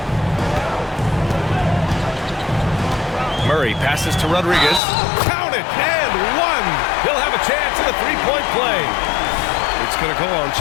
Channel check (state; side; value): drops out; right; at 4.8 s